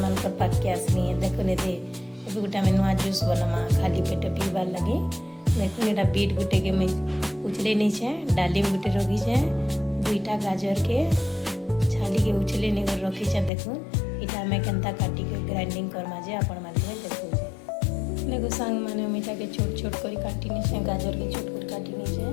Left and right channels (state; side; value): drops out; right; at 13.5 s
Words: पाक के आसनी देखुन ये गोटे आम नुआ जूस बनमा खाली पेट पीबार लगे देखुन यहाँ बीट गुटे के मुझे उछले नीचे डालिम गुटे रखीचे दुईटा गाजर के छाली के उछले नहीं कर रखीचे देखुन इटा आम केन्ता काटी के ग्राइंडिंग करमा जे आपण मान देखुचे देखो सांग मैंने मीठा के छोट छोट कर काटी नीचे गाजर के छोट कर काटी नीचे